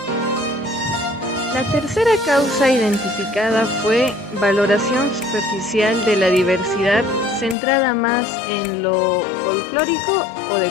La tercera causa identificada fue valoración superficial de la diversidad centrada más en lo folclórico o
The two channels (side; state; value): right; drops out; at 7.6 s